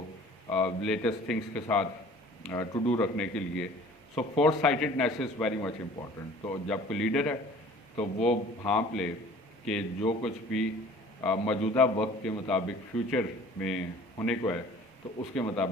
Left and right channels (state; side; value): normal; both; correlation 0.48